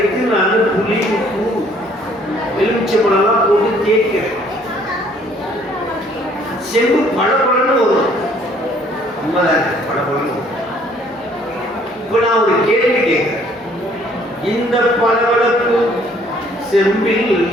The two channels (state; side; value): normal; both; correlation 0.60